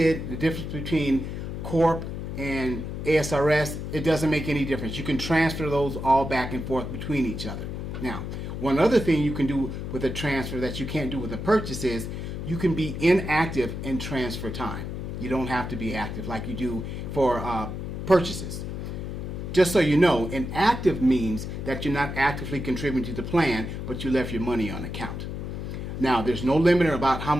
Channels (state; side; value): noise; left; hum, 6 dB below the sound